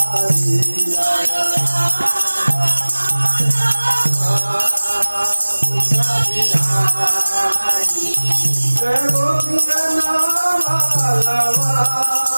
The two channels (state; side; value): inverted; both; correlation -1.00